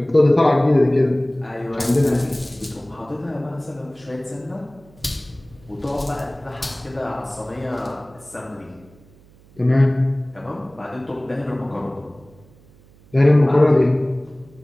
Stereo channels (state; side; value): noise; right; hum, 27 dB below the sound